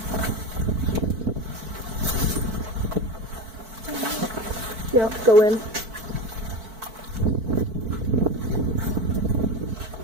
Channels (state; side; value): late; left; 4.5 ms